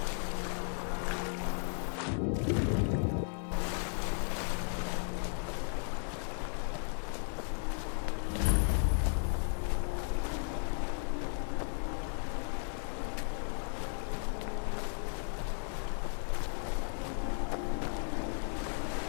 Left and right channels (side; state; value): right; silent; 54 dB below the other